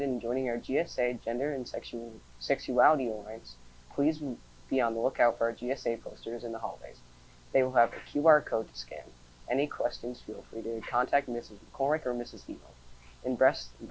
in joining our GSA Gender and Sexuality Alliance, please be on the lookout for our GSA posters in the hallways. They will have a QR code to scan. Any questions, feel free to contact Mrs. McCormick or Mrs. Emo. And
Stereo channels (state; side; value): identical; both; correlation 1.00